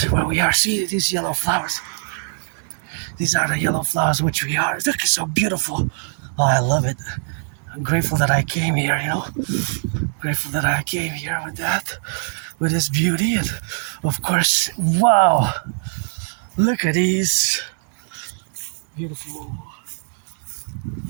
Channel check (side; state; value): left; silent; 63 dB below the other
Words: where we are. See these yellow flowers. These are the yellow flowers which we are. Look, it's so beautiful. Oh, I love it. I'm grateful that I came here, Grateful that I came here with that, with this beauty. And of course, wow. Look at these. Beautiful.